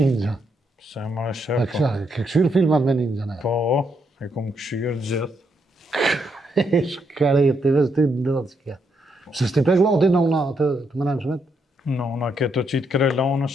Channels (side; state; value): both; normal; correlation 0.77